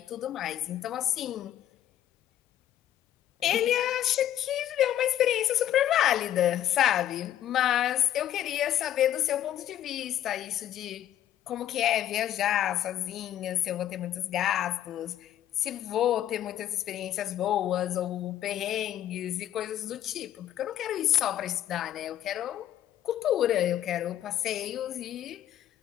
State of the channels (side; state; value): right; quieter; 11.6 dB